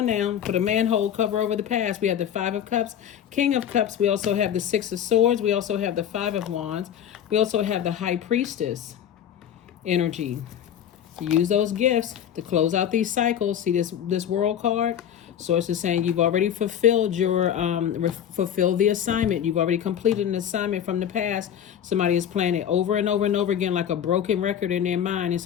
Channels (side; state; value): right; quieter; 9.6 dB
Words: now. Put a manhole cover over the past. We have the Five of Cups, King of Cups. We also have the Six of Swords. We also have the Five of Wands. We also have the High Priestess energy. Use those gifts to close out these cycles. See this World card? Source is saying you've already fulfilled your fulfilled the assignment. You've already completed an assignment from the past. Somebody is playing it over and over and over again like a broken record in their mind. And